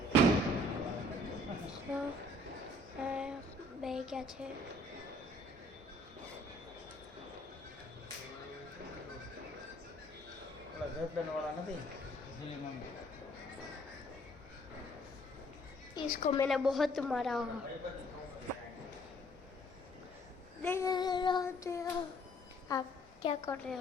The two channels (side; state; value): both; normal; correlation 0.60